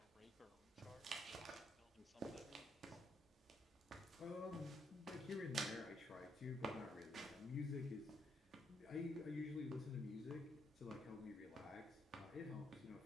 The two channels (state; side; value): normal; both; correlation 0.75